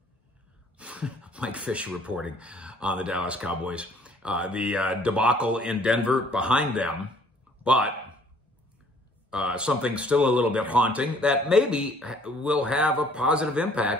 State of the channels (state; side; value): normal; both; correlation 0.59